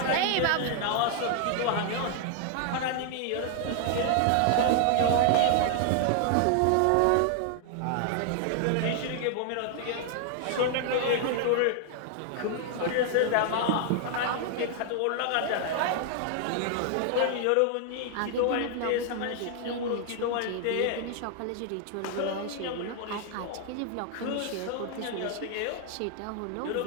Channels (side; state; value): both; different; correlation 0.00